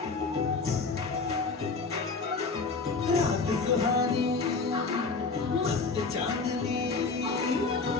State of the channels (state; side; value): quieter; right; 4.3 dB